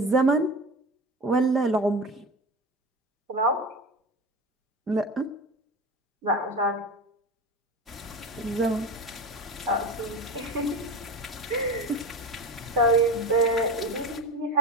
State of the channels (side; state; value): both; normal; correlation 0.26